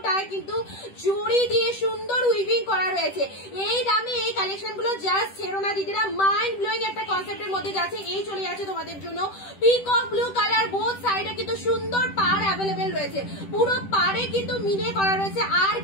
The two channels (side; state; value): right; late; 10 ms